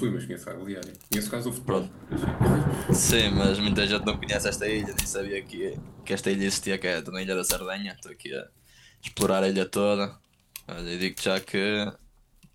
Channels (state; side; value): identical; both; correlation 1.00